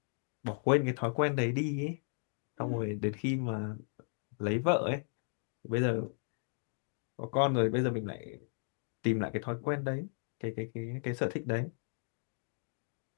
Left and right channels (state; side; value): silent; right; digital silence